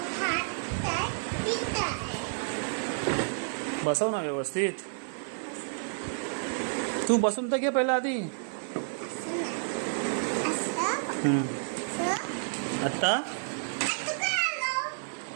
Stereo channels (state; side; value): silent; left; 58 dB below the other